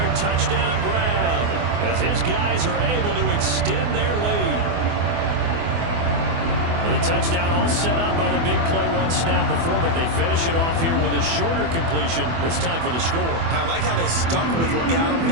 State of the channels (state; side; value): late; left; 24 ms